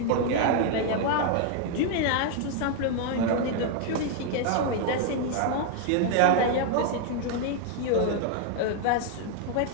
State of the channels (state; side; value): different; both; correlation 0.00